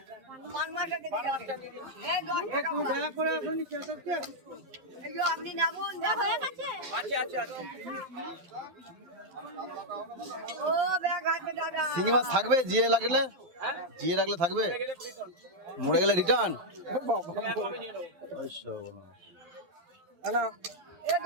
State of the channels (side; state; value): left; late; 12 ms